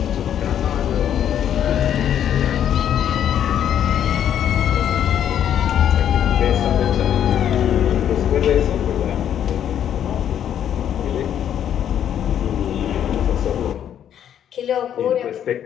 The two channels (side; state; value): right; quieter; 9.8 dB